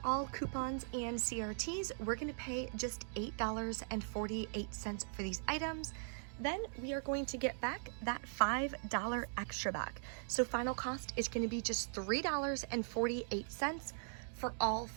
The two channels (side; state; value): left; silent; digital silence